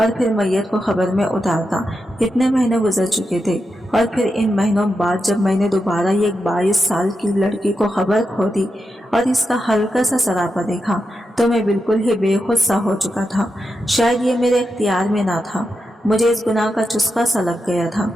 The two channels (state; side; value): normal; both; correlation 0.87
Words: फिर मैयत को खबर में उतारता। इतने महीने गुजर चुके थे और फिर इन महीनों बाद जब मैंने दोबारा ये 22 साल की लड़की को खबर खोदी और इसका हल्का सा सरापा देखा तो मैं बिल्कुल ही बेखुद सा हो चुका था। शायद ये मेरे इख्तियार में ना था। मुझे इस गुनाह का चुस्का सा लग गया था।